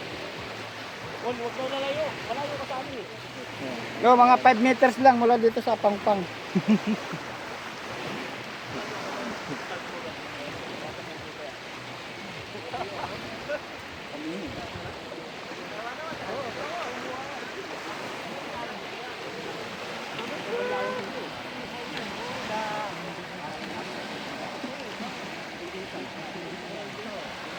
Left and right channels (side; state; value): both; identical; correlation 1.00